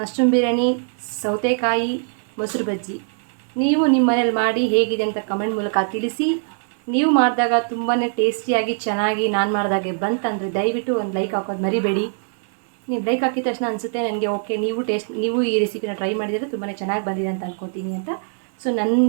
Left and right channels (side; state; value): left; silent; 64 dB below the other